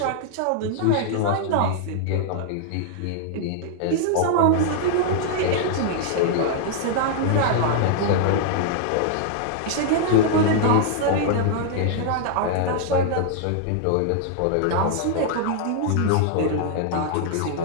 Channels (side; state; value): both; different; correlation -0.01